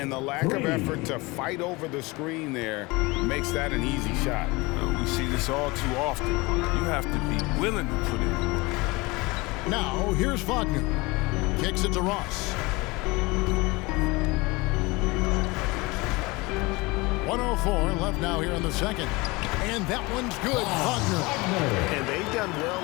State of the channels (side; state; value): right; quieter; 23.9 dB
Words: the lack of effort to fight over the screen there makes that an easy shot. We see this all too often. You have to be willing to put in the work. Now, here's Wagner. Kicks it to Ross. 104 left now here in the second. And that one's good. Wagner. And they've done